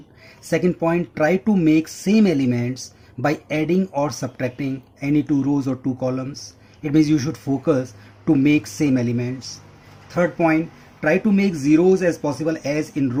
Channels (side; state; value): both; identical; correlation 1.00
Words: Second point, try to make same elements by adding or subtracting any two rows or two columns. It means you should focus to make same elements. Third point, try to make zeros as possible as in